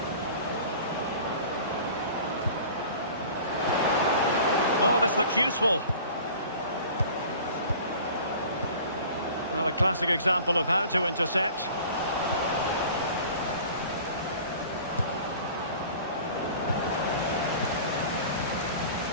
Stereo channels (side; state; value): both; inverted; correlation -0.44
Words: Oh, this looks useful. Well, a classic example of how to intercept.